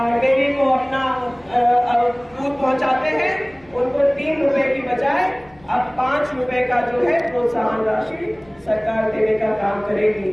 डेयरी को अपना दूध पहुंचाते हैं, उनको 3 रुपए की बजाय अब 5 रुपए का जो है प्रोत्साहन राशि सरकार देने का काम करेगी।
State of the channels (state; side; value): noise; left; rumble, 29 dB below the sound